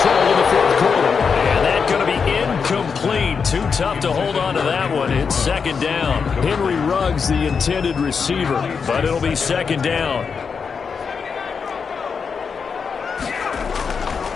in the 4th quarter. And that's going to be incomplete. Too tough to hold on to that one. It's second down. Henry Ruggs, the intended receiver. But it'll be second down.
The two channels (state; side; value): quieter; right; 5.8 dB